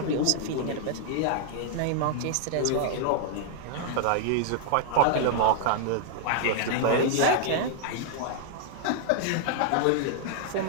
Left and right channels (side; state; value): both; different; correlation 0.00